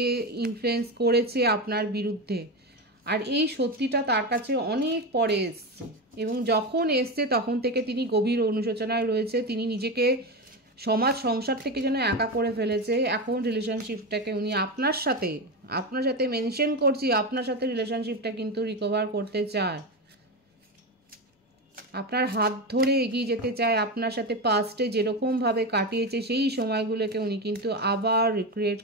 ইনফ্লুয়েন্স করেছে আপনার বিরুদ্ধে, আর এই সত্যিটা তার কাছে অনেক পরে এসছে এবং যখন এসছে তখন থেকে তিনি গভীর অনুশোচনায় রয়েছে। তিনি নিজেকে সমাজ সংসার থেকে যেন একা করে ফেলেছে। এখন রিলেশনশিপটাকে উনি আপনার সাথে মেনশন করছি, আপনার সাথে রিলেশনশিপটা কিন্তু রিকভার করতে চায়, আপনার হাত ধরে এগিয়ে যেতে চায়। আপনার সাথে পাস্টে যেরকমভাবে কাটিয়েছে সেই সময়গুলোকে উনি কিন্তু আবার রিক্রিয়েট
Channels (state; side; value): normal; both; correlation 0.17